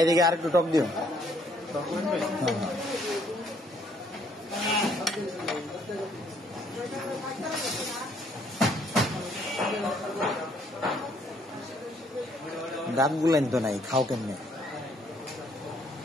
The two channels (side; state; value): both; normal; correlation 0.66